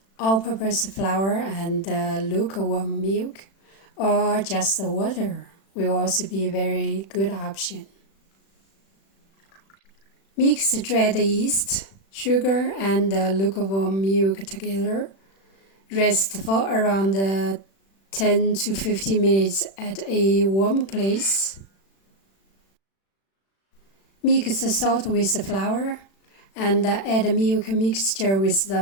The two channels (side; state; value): right; late; 36 ms